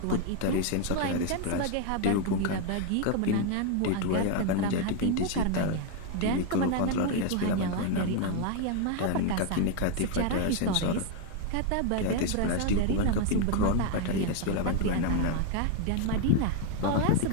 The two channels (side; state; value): both; different; correlation 0.01